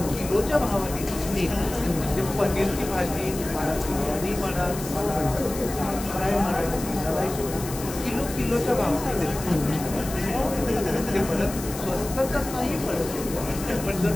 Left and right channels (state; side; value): noise; left; hiss, 11 dB below the sound